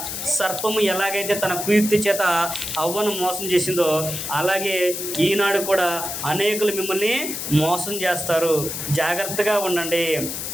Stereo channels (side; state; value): left; noise; hiss, 5 dB below the sound